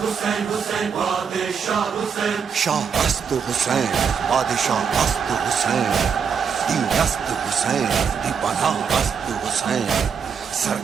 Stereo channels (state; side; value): quieter; left; 6.6 dB